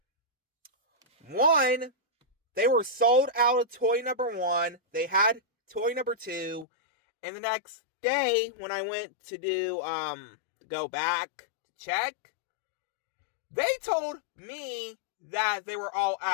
one, they were sold out of toy number 1, they had toy number 2, And the next day, when I went to go back to check, they told me that they were all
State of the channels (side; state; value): right; drops out; at 6.7 s